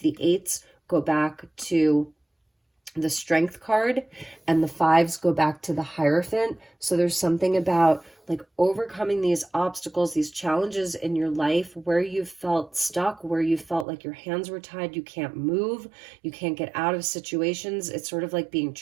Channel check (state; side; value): drops out; left; at 13.9 s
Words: eights go back to the Strength card, and the fives go back to the Hierophant. So there's something about like overcoming these obstacles, these challenges in your life where you felt stuck, where you felt like your hands were tied, you can't move, you can't get out of situations. It's sort of like being